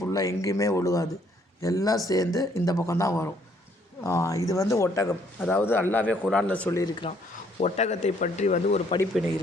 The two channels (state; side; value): normal; both; correlation 0.66